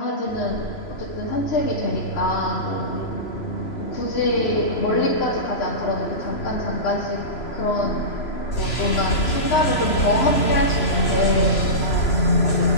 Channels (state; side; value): late; right; 3.0 ms